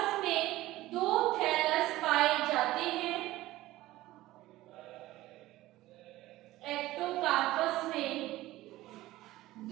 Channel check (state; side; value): quieter; left; 16.9 dB